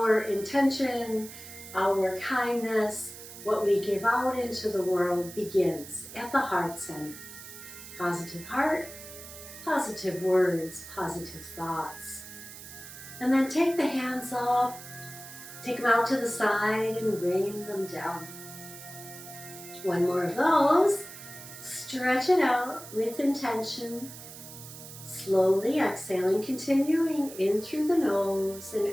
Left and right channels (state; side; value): noise; right; hiss, 14 dB below the sound